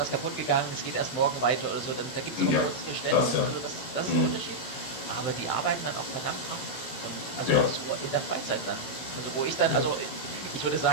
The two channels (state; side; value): late; right; 16 ms